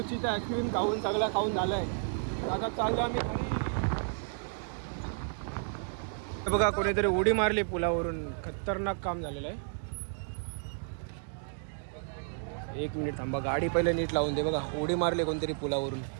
आईस्क्रीम खाऊन सगळं खाऊन झालंय आता चाललो आम्ही घरी बघा कोणीतरी उडी मारली पुलावरून खतरनाक काम झालेलं आहे एक मिनिट थांबा गाडी पहिले नीट लावून दे बघा उडी मारली कोणतरी पुलावरून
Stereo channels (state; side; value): silent; left; digital silence